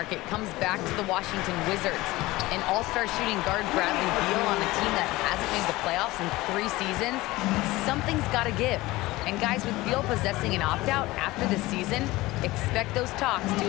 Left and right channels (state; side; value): quieter; right; 19.4 dB